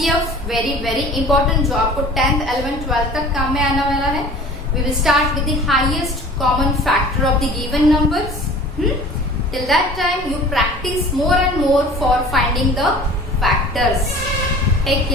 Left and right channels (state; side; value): normal; both; correlation 0.44